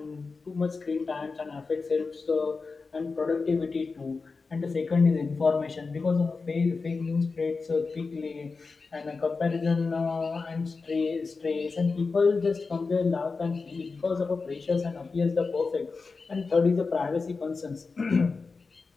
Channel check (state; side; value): quieter; right; 4.3 dB